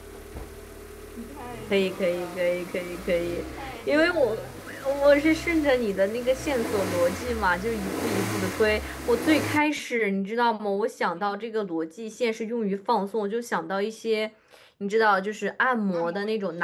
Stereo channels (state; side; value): identical; both; correlation 1.00